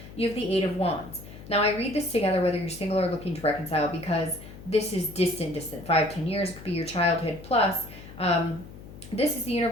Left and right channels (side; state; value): left; noise; hum, 16 dB below the sound